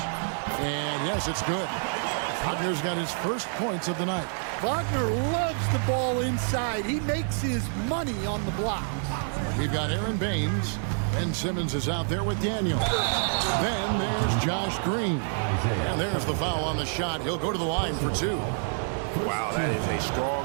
And yes, it's good. Wagner's got his first points of the night. Wagner loves the ball inside. He makes his money on the blocks. We've got Aaron Baines, and Simmons is out there with Daniel. Then there's Josh Green. And there's the foul on the shot. He'll go to the line for two. Wow, that is a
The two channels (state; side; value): silent; left; 60 dB below the other